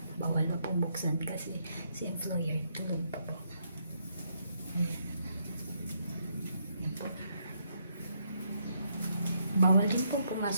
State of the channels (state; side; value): inverted; both; correlation -0.75